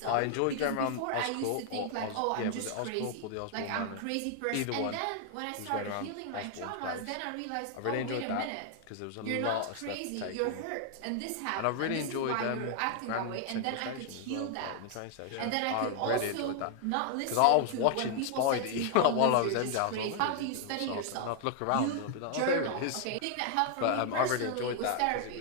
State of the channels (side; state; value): both; different; correlation 0.00